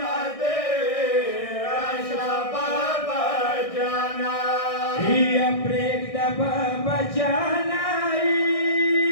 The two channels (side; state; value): right; late; 1.6 ms